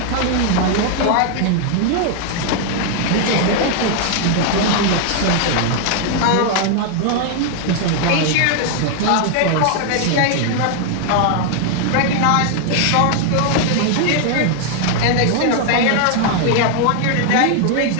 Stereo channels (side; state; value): both; different; correlation 0.00